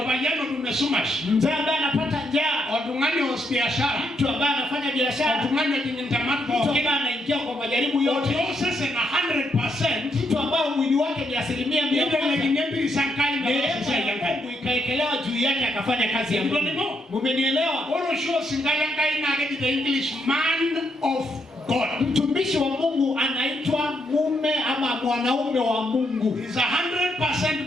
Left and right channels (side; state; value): both; normal; correlation 0.78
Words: tumesumash Mzee ambaye anapata njaa, watungani wa biashara, mtu ambaye anafanya biashara, watungani jintamatu, mtu ambaye anaingia kwa majaribu yote, sasa na 100%, mtu ambaye mwili wake ni 100%, ndio sankai na Mungu ikaekelewa juu yake akafanya kazi ya Mungu. Mmenielewa? Oro show singala kai na the English man of God. Mtumishi wa Mungu anaitwa mume ama mwanaume wa Mungu. He's 100%